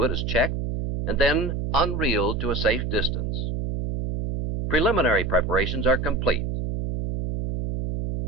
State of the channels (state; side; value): noise; right; hum, 3 dB below the sound